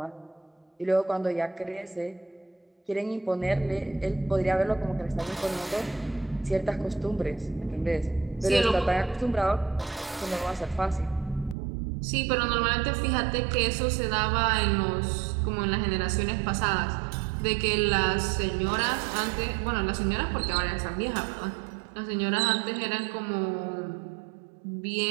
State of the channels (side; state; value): left; drops out; at 11.6 s